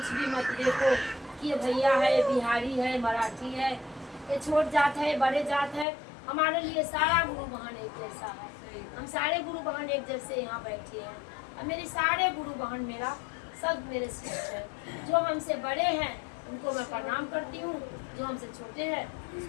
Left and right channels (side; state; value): right; drops out; at 5.9 s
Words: भी मत देखो कि ये भैया है, ये बिहारी है, मराठी है, ये छोट जात है, बड़े जात है। हमारे लिए सारा गुरु बहन एक जैसा है। हम सारे गुरु बहन एक जैसे यहाँ बैठे हैं और मेरे सारे गुरु बहन मेरा सब मेरे शिष्य है। जो हमसे बड़े हैं उनको मैं प्रणाम करती हूँ, जो हमसे छोटे हैं